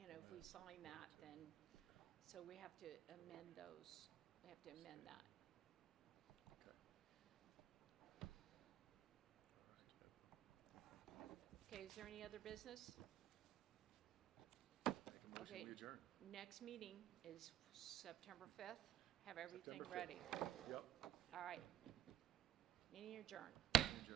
we sign that, then, so we have to amend those, we have to amend that. Okay. Okay, is there any other business? Make a motion, Okay. we adjourn. Next meeting is September 5th. Have everything September 5th. ready. Yep, All right. Meeting adjourned.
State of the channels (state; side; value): quieter; left; 10.7 dB